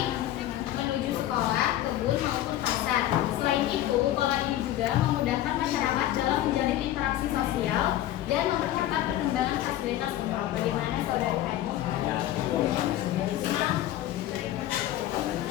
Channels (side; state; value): right; quieter; 13.5 dB